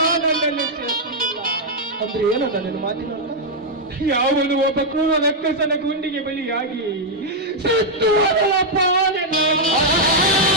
ನನ್ನಲ್ಲಿ ಶಕ್ತಿ ಇಲ್ಲ. ಅಂದ್ರೆ ಏನಂತ ನೀನು ಮಾತಿನ? ಯಾವನು ಒಬ್ಬ ಕ್ರೂರ ರಕ್ಕಸನ ಗುಂಡಿಗೆ ಬಲಿಯಾಗಿ ಸತ್ತು ಹೋದವಪ್ಪ.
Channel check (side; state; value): both; normal; correlation -0.03